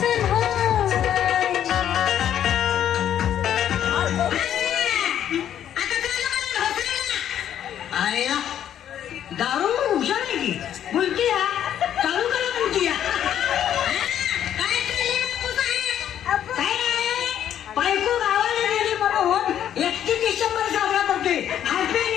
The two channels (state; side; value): quieter; right; 10.3 dB